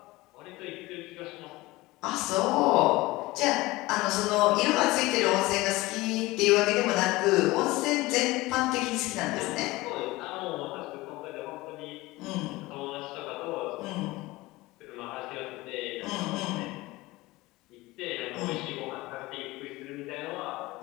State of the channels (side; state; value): right; quieter; 20.2 dB